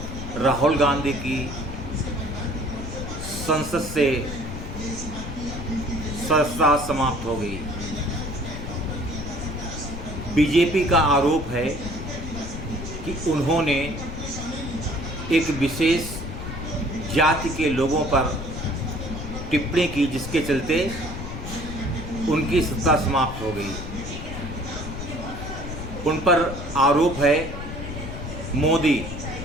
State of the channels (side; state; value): left; noise; rumble, 7 dB below the sound